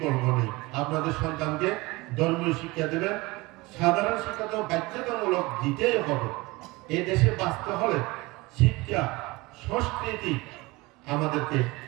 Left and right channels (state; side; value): quieter; left; 22.6 dB